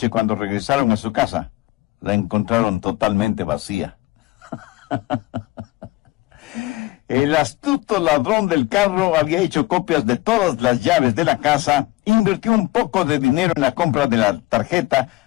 cuando regresaron a su casa, la encontraron totalmente vacía. El astuto ladrón del carro había hecho copias de todas las llaves de la casa, invirtió un poco de dinero en la compra de la tarjeta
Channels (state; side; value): quieter; right; 19.4 dB